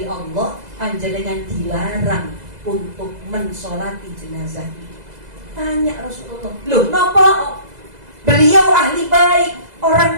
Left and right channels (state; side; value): late; left; 2.0 ms